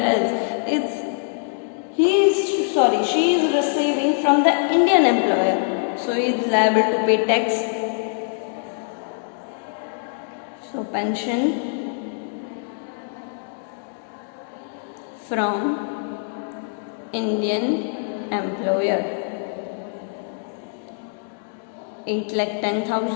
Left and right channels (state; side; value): silent; right; digital silence